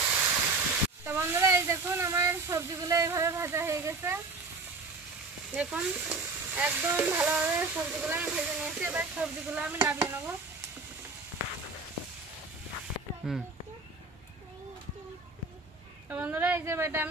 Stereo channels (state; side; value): quieter; left; 3.8 dB